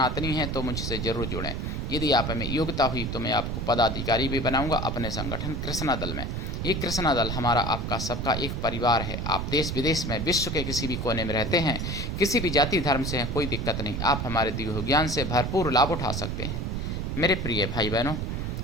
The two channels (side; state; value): right; noise; rumble, 3 dB below the sound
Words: हैं तो मुझसे जरूर जुड़ें। यदि आप में योग्यता हुई तो मैं आपको पदाधिकारी भी बनाऊंगा अपने संगठन कृष्णा दल में। ये कृष्णा दल हमारा आपका सबका एक परिवार है। आप देश विदेश में, विश्व के किसी भी कोने में रहते हैं, किसी भी जाति धर्म से हैं, कोई दिक्कत नहीं। आप हमारे दिव्य ज्ञान से भरपूर लाभ उठा सकते हैं। मेरे प्रिय भाई बहनों,